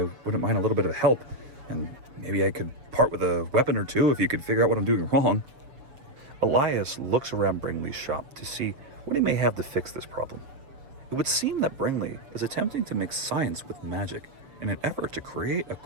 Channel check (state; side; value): late; left; 6.9 ms